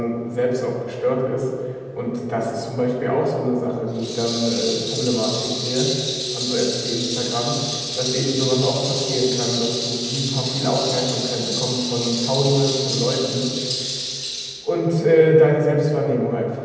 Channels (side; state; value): both; identical; correlation 1.00